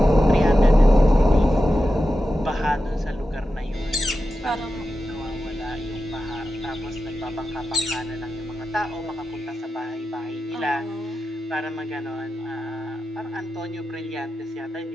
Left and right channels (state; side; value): normal; both; correlation 0.91